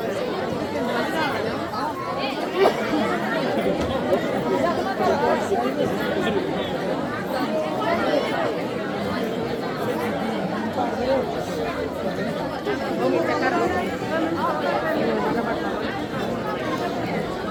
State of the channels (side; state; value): both; identical; correlation 1.00